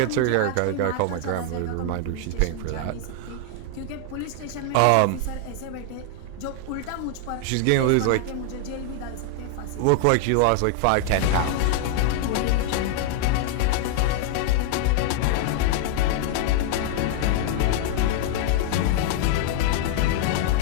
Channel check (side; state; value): both; different; correlation 0.00